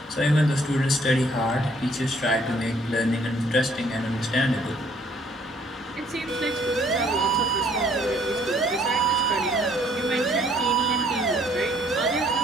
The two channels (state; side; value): normal; both; correlation 0.63